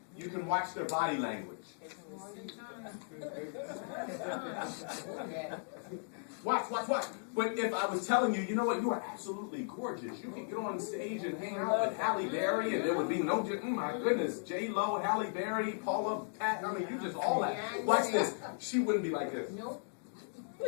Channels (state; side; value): silent; right; digital silence